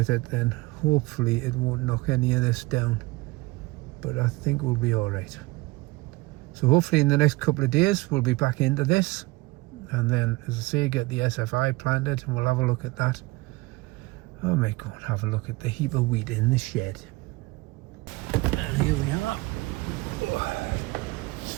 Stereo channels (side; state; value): left; quieter; 22.1 dB